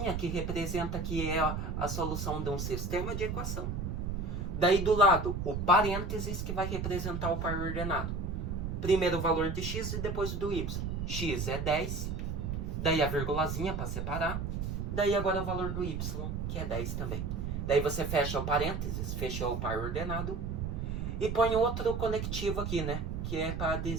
que representa que é a solução de um sistema de equação. Daí do lado, o parênteses que vai representar o par ordenado. Primeiro o valor de x e depois do y. X é 10. Daí a vírgulazinha para separar. Daí agora o valor do y, que é 10 também. Daí você fecha o parênteses, fechou o par ordenado. E põe outro conectivo aqui, né? Que é para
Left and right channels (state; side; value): noise; right; rumble, 3 dB below the sound